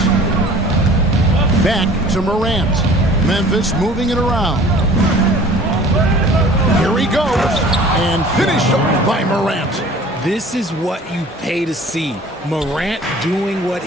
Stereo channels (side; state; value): both; normal; correlation 0.47